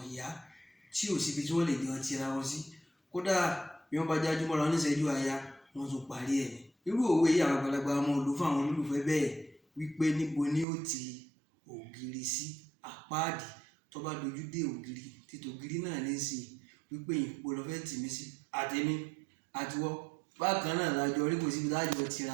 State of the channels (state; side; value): drops out; left; at 10.7 s